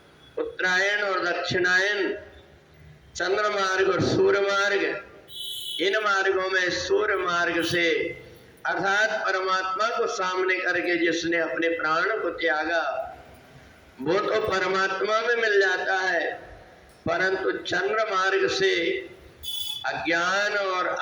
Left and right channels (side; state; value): both; identical; correlation 1.00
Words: उत्तरायण और दक्षिणायन, चंद्र मार्ग और सूर्य मार्ग। इन मार्गों में सूर्य मार्ग से अर्थात परमात्मा को सामने करके जिसने अपने प्राण को त्यागा वो तो परमात्मा में मिल जाता है, परंतु चंद्र मार्ग से अज्ञान और